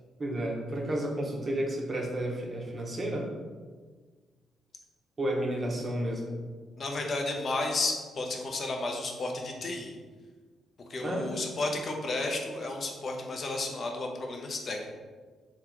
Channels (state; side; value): normal; both; correlation 0.81